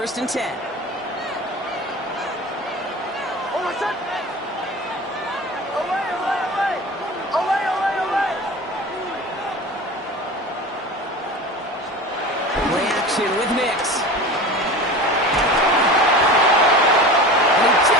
and 10. Away. action with Nix. And he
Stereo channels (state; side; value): normal; both; correlation 0.34